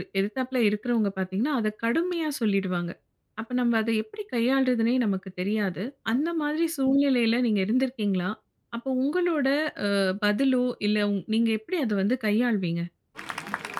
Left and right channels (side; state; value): both; identical; correlation 1.00